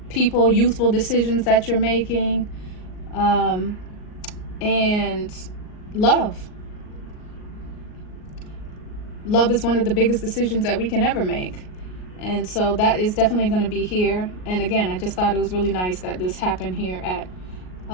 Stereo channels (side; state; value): right; late; 38 ms